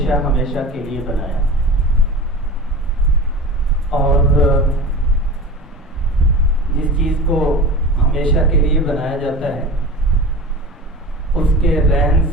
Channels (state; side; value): normal; both; correlation 0.34